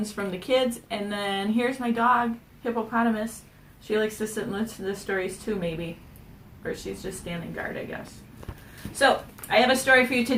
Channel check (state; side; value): identical; both; correlation 1.00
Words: from the kids, and then here's my dog, Hippopotamus. She likes to sit and listen to the stories too, maybe. Or she's just standing guard, I guess. So, I have a story for you